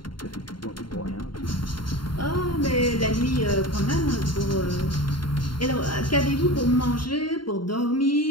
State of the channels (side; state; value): right; late; 0.72 ms